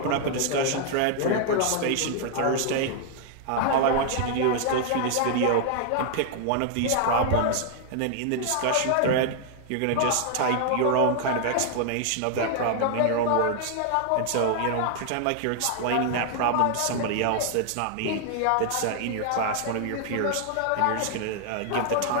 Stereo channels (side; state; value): both; different; correlation 0.00